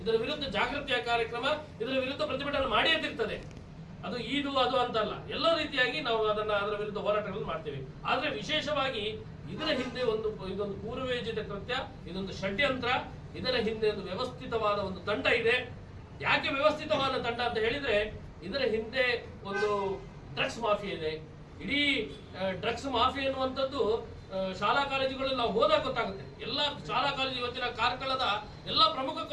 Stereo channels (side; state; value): both; identical; correlation 1.00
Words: ಇದರ ವಿರುದ್ಧ ಜಾಗೃತಿಯ ಕಾರ್ಯಕ್ರಮ, ಇದರ ವಿರುದ್ಧ ಪ್ರತಿಭಟನೆ ಮಾಡಿರ್ತಿರ್ತದೆ. ಅದು ಅದು ಅಂತಲ್ಲ, ಎಲ್ಲ ರೀತಿಯಾಗಿ ನಾವು ಅದರ ವಿರುದ್ಧ ಹೋರಾಟಗಳನ್ನು ಮಾಡ್ತೇವೆ. ಆದ್ರೆ ವಿಶೇಷವಾಗಿ ಇದರ ಹಿಂದೆ ಇದೊಂದು ಪೂರ್ವಯೋಜಿತ ಕೃತ್ಯ, ಇದೊಂದು ಷಡ್ಯಂತ್ರ. ಇದರ ಹಿಂದೆ ಒಂದು ವ್ಯವಸ್ಥಿತವಾದ ಒಂದು ತಂಡ ಇದೆ. ಯಾಕೆ ವ್ಯವಸ್ಥಿತವಾದ ತಂಡ ಅಂತ ಹೇಳಿದ್ರೆ, ಇದರ ಹಿಂದೆ ಒಂದು ಡ್ರಗ್ಸ್ ಮಾಫಿಯಾ ಇದೆ. ಇಡೀ ಡ್ರಗ್ಸ್ ಮಾಫಿಯಾ ಎನ್ನುವಂಥದ್ದು ಶಾಲಾ ಕಾಲೇಜುಗಳಲ್ಲಿ ನಾವು ಹೋದಾಗ ಗೊತ್ತಾಗುತ್ತೆ. ಎಲ್ಲ ಶಾಲಾ ಕಾಲೇಜು ಇವತ್ತಿನ ಕಾರ್ಕಳದ ಎಲ್ಲ ಪ್ರಮುಖ